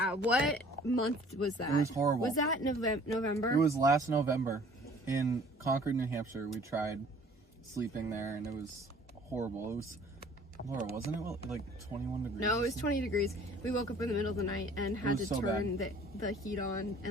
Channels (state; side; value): normal; both; correlation 0.53